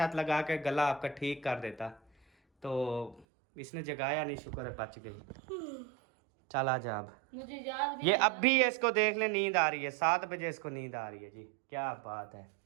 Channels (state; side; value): drops out; left; at 3.2 s